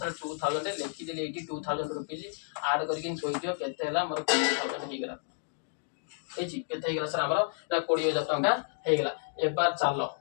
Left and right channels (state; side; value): silent; right; digital silence